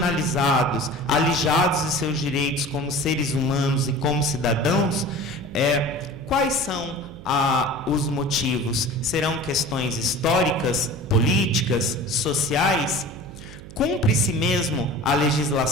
alijados de seus direitos como seres humanos e como cidadãos, quais são os motivos? Serão questões históricas, políticas, sociais? Cumpre-se mesmo a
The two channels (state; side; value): noise; right; hum, 16 dB below the sound